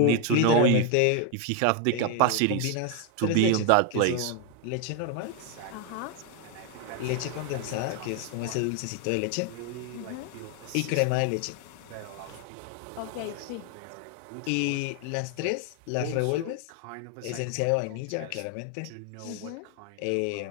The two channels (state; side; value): different; both; correlation 0.01